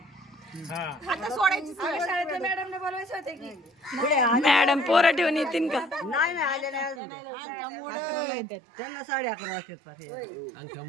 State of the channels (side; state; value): left; drops out; at 7.0 s